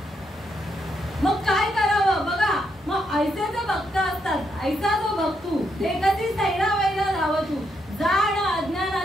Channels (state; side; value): normal; both; correlation 0.79